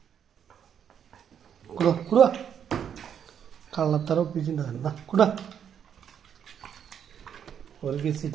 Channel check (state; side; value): quieter; left; 8.5 dB